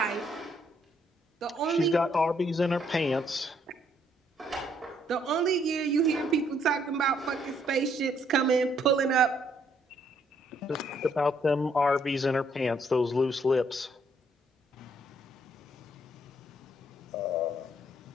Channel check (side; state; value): both; normal; correlation 0.69